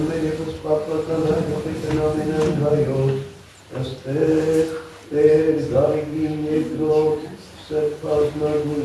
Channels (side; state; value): both; identical; correlation 1.00